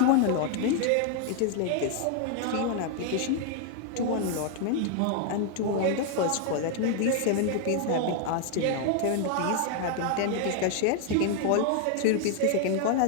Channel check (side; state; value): both; different; correlation 0.00